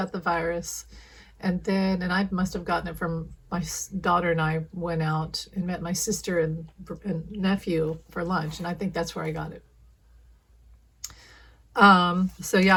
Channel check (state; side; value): identical; both; correlation 1.00